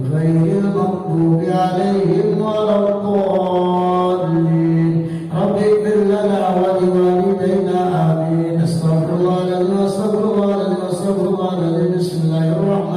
غير المغضوب عليهم ولا الضالين رب اغفر لنا ولوالدينا آمين استغفر الله العظيم استغفر الله العظيم بسم الله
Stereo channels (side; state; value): both; identical; correlation 1.00